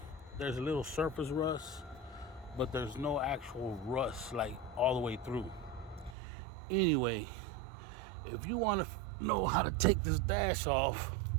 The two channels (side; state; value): left; drops out; at 6.2 s